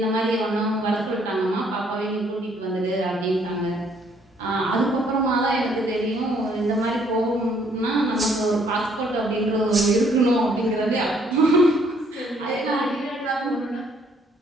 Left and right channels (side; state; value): both; normal; correlation 0.65